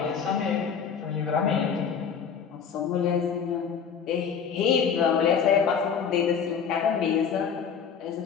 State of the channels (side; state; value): right; quieter; 6.8 dB